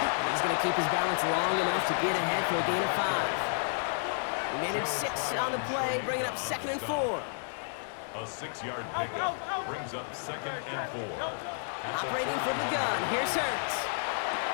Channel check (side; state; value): right; silent; 57 dB below the other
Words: he's going to keep his balance long enough to get ahead for a gain of 5. He managed 6 on the play, bringing up 2nd and 4. A 6-yard pickup brings up 2nd and 4. Operating from the gun, here's Hurts.